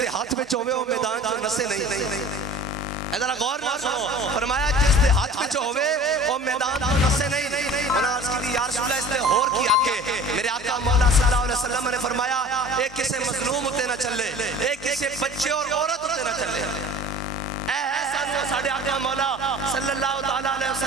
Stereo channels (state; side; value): normal; both; correlation 0.43